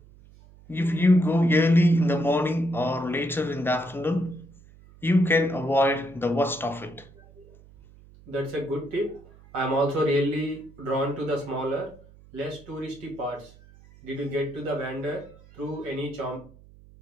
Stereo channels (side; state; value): right; noise; hum, 24 dB below the sound